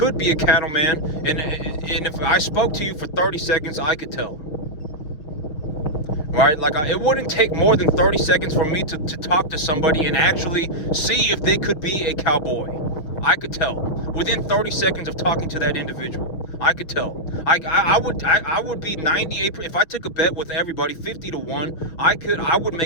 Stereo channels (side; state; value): right; late; 6.6 ms